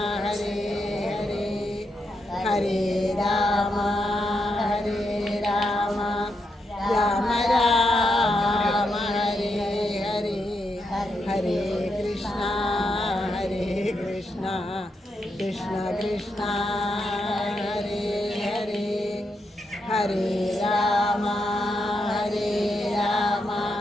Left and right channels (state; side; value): normal; both; correlation 0.82